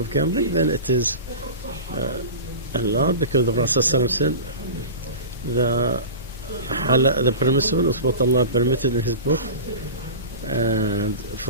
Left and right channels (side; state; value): both; inverted; correlation -0.31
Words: gambling, then it is allowed because the Prophet ﷺ said the permissible is what Allah permitted in His book, and